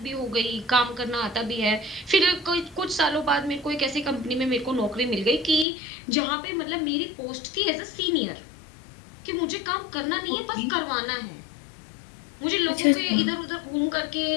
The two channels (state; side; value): drops out; right; at 5.7 s